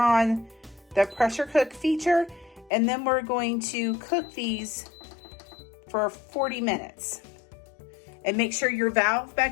the pressure cook feature, and then we're going to cook these for 40 minutes. And make sure your valve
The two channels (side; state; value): right; drops out; at 2.7 s